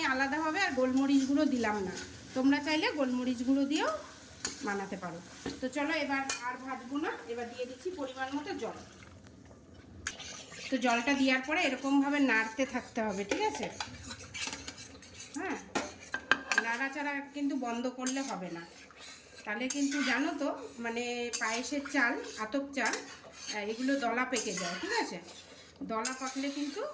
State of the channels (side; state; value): both; identical; correlation 1.00